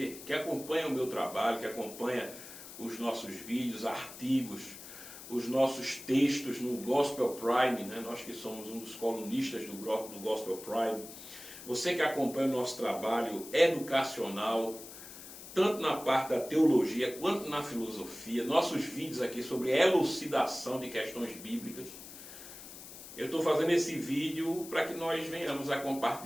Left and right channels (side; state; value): left; noise; hiss, 14 dB below the sound